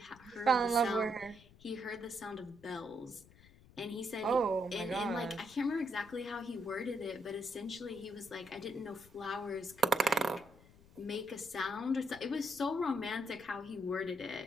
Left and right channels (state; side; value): noise; left; rumble, 23 dB below the sound